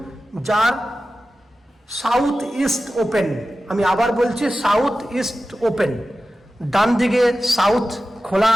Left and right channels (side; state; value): both; normal; correlation 0.94